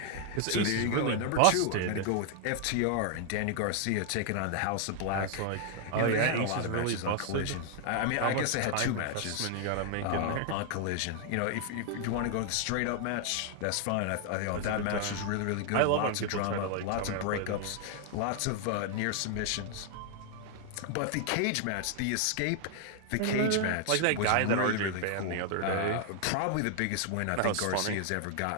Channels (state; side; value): different; both; correlation 0.00